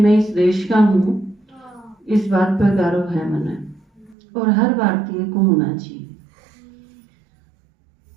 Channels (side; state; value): left; drops out; at 4.2 s